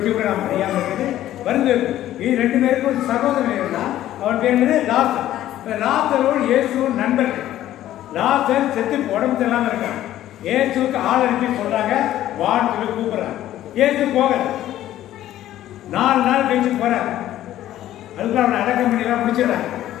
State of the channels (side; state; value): right; quieter; 13.2 dB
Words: கூட நாம் அறியாமல் இருக்குது. வருந்த இது 2 பேருக்கும் ஒரு சகோதரன் இருந்தால் அவன் பேர் என்னது? லாசர். லாசரோடு இயேசுவும் நண்பர்கள். லாசர் செத்து உடம்பு தெரியாமல் இருக்கான். இயேசுக்கு ஆள் அனுப்பி சொல்றாங்க வான்னு சொல்லி கூப்பிடுறாங்க. இயேசு போகல. 4 நாள் கழிச்சு போறாரு. அதுக்கு அவனை அடக்கம் பண்ணிலாம் முடிச்சிடறாங்க.